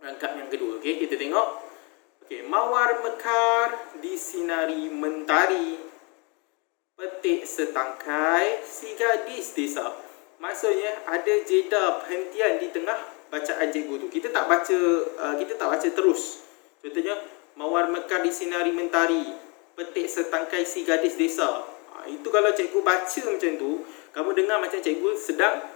yang kedua. Okey, kita tengok. Okey, mawar mekar disinari mentari, petik setangkai si gadis desa. Maksudnya ada jeda perhentian di tengah bacaan cikgu tu. Kita tak baca terus. Contohnya mawar mekar disinari mentari, petik setangkai si gadis desa. Itu kalau cikgu baca macam tu, kamu dengar macam cikgu sedang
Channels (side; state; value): right; quieter; 31.4 dB